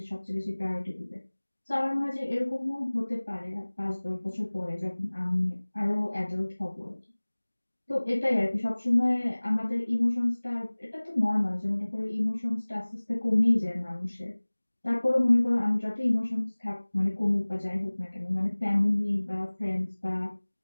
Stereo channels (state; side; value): inverted; both; correlation -1.00